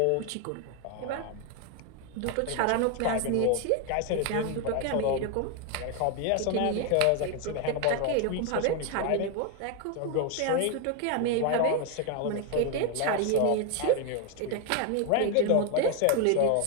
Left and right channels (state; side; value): different; both; correlation 0.01